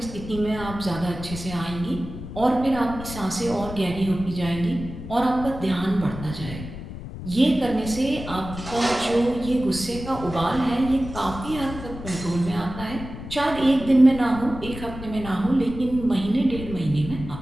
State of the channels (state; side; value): noise; left; rumble, 11 dB below the sound